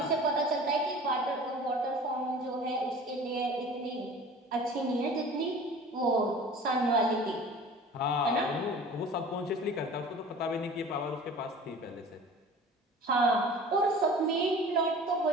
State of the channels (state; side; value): normal; both; correlation 0.42